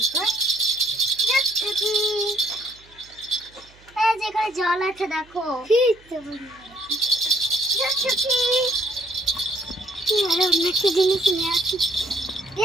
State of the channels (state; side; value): noise; right; hum, 28 dB below the sound